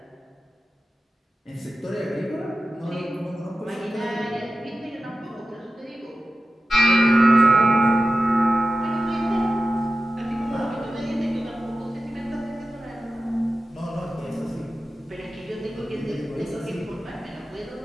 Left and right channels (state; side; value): normal; both; correlation 0.93